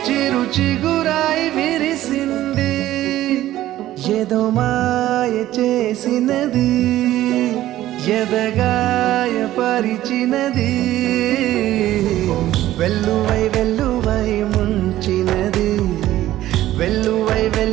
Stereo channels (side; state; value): left; quieter; 14.3 dB